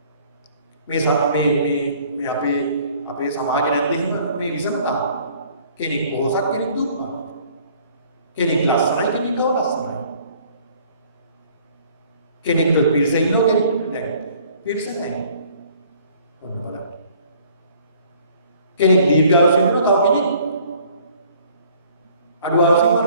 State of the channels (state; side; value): inverted; both; correlation -0.56